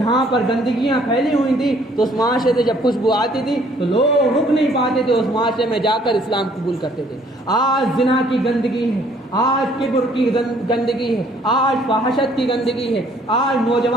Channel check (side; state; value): both; normal; correlation 0.61